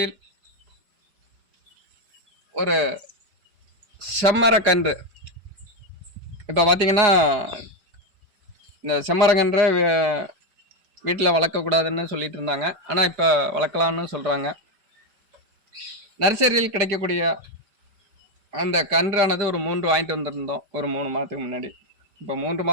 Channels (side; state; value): left; late; 4.9 ms